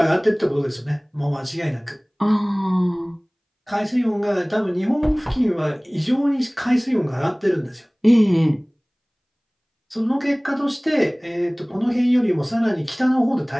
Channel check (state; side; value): identical; both; correlation 1.00